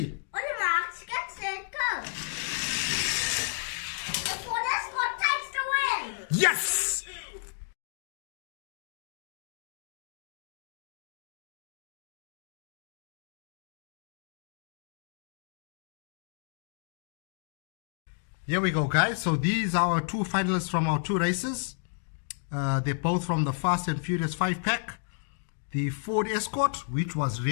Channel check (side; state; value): right; silent; digital silence